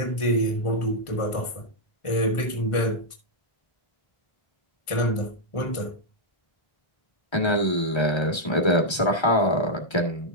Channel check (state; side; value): late; right; 1.3 ms